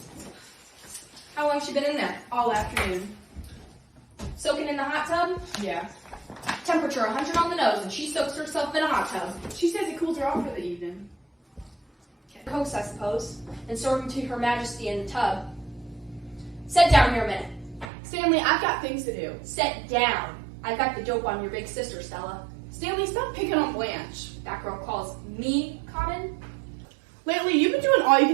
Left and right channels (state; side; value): drops out; left; at 17.9 s